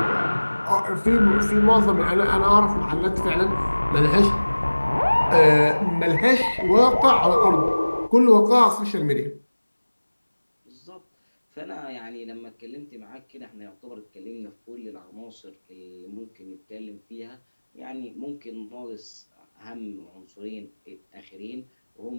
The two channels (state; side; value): inverted; both; correlation -1.00